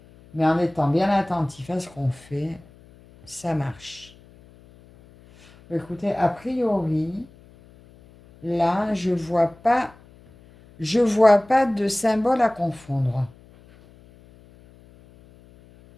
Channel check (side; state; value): left; noise; hum, 25 dB below the sound